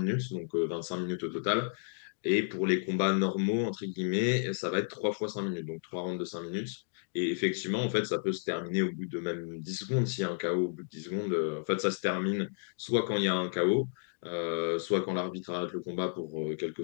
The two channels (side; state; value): right; silent; digital silence